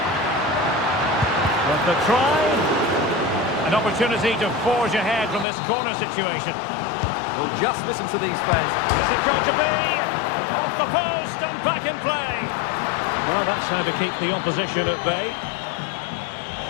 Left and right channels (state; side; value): drops out; right; at 5.5 s